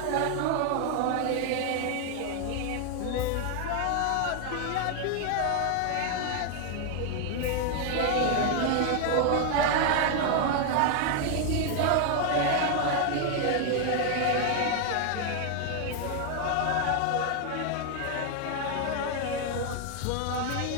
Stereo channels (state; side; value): different; both; correlation 0.00